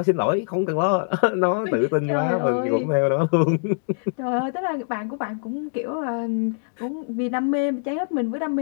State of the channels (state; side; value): silent; right; digital silence